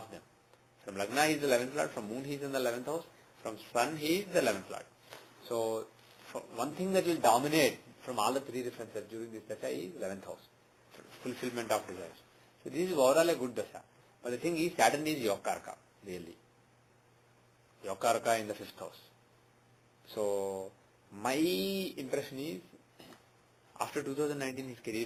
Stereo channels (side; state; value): both; identical; correlation 1.00